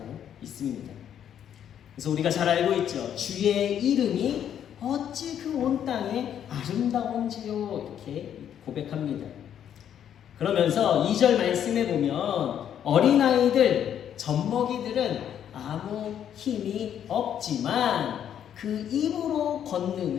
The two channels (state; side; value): quieter; right; 9.6 dB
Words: 있습니다. 그래서 우리가 잘 알고 있죠. 주의 이름이 어찌 그 온 땅에 아름다운지요, 이렇게 고백합니다. 그러면서 2절 말씀에 보면 어린아이들, 젖먹이들은 아무 힘이 없지만 그 입으로